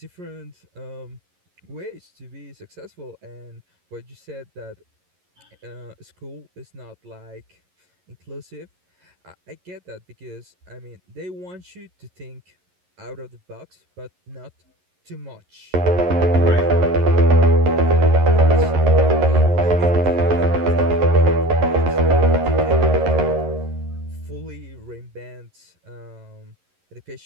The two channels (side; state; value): left; late; 11 ms